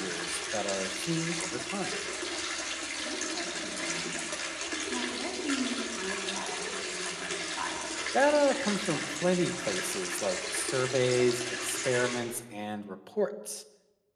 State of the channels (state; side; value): identical; both; correlation 1.00